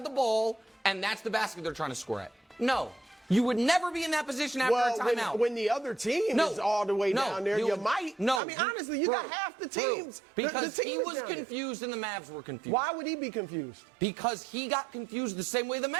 the ball and that's the basket they're trying to score at? No. You would never be in that position after a timeout. When the other team is all the way down there, you might. No, I mean, honestly, you got half the teams. Because the team he was confused and the Mavs were confused. Why would he be confused? Because he got confused the same way the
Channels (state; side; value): drops out; left; at 8.4 s